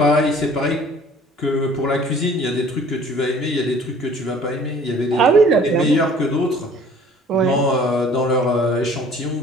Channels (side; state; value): both; normal; correlation 0.52